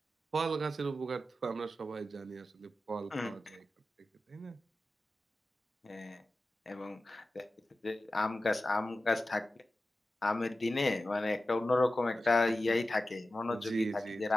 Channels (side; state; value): both; normal; correlation 0.94